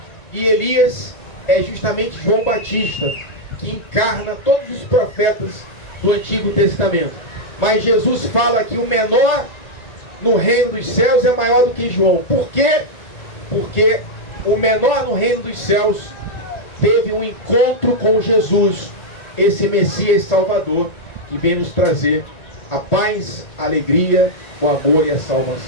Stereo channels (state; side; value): late; right; 1.9 ms